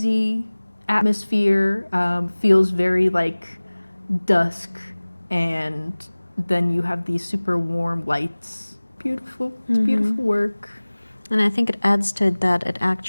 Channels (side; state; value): both; inverted; correlation -1.00